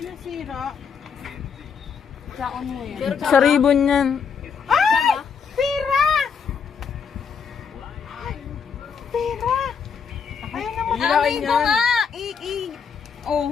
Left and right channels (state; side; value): quieter; right; 6.4 dB